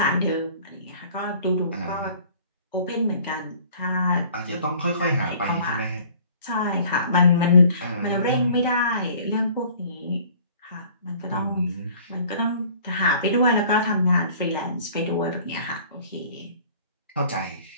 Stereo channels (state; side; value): inverted; both; correlation -0.51